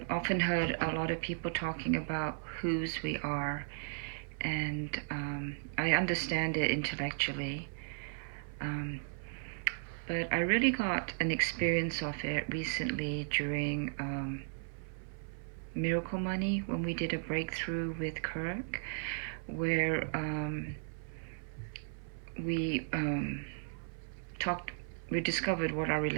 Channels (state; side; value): silent; left; 54 dB below the other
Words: often heard a lot of people talking about whose we are, and I understand it intellectually. Um, but I really got an experience of it recently during Miracle Money when we did a breakthrough with Kirk, where we talked, we discovered what our